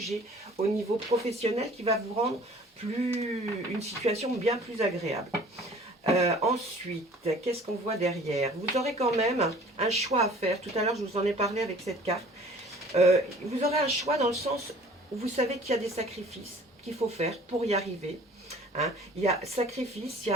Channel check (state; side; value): normal; both; correlation 0.50